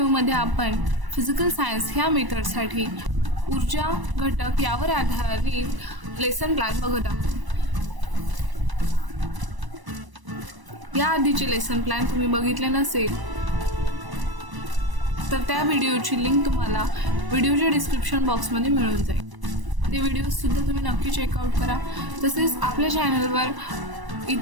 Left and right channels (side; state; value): left; late; 1.0 ms